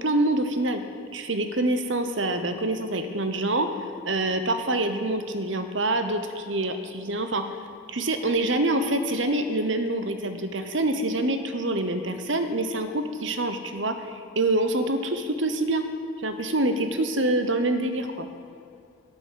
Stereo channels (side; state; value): both; normal; correlation 0.10